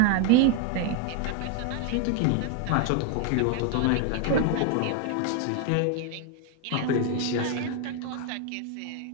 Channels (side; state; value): both; different; correlation 0.01